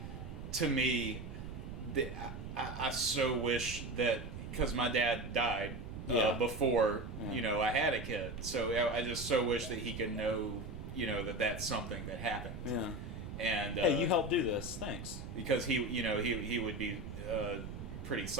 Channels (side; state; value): right; noise; rumble, 8 dB below the sound